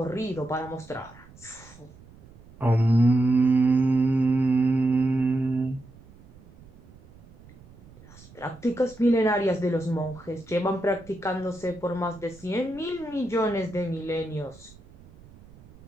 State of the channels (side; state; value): right; noise; rumble, 23 dB below the sound